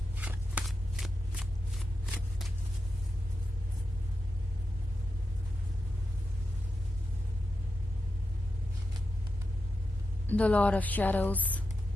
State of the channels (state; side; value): normal; both; correlation 0.87